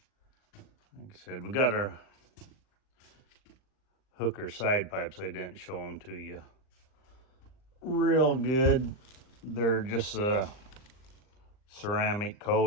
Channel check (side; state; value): right; late; 39 ms